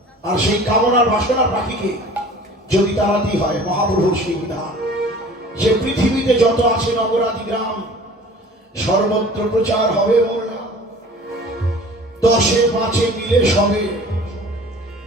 আর সেই কামনার বাসনার পাখিকে যদি তাড়াতে হয়, মহাপ্রভুর সেই বিধান যে পৃথিবীতে যত আছে নগরাদি গ্রাম, সর্বত্র প্রচার হবে মোর নাম। 10-5 মিলে সবে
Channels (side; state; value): both; normal; correlation 0.45